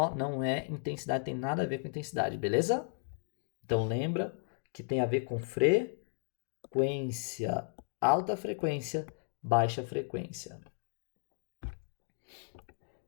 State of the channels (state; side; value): silent; right; digital silence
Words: Não é intensidade, tem nada a ver com intensidade, beleza? Então lembra que tem a ver com frequência. Alta frequência, baixa frequência.